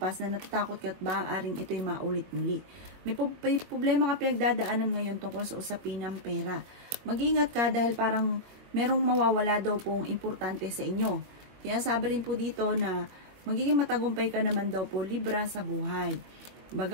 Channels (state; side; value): late; left; 22 ms